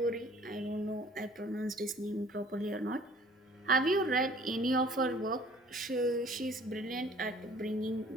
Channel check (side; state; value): both; normal; correlation 0.53